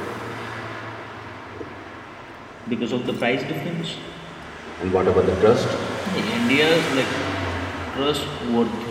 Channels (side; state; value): both; identical; correlation 1.00